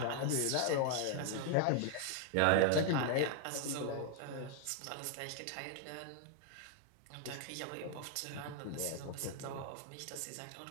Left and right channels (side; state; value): both; different; correlation 0.00